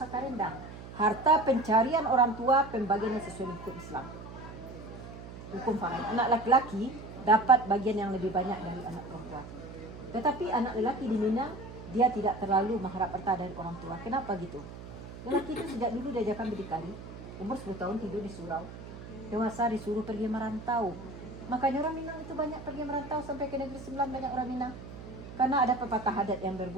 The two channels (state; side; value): noise; right; hum, 13 dB below the sound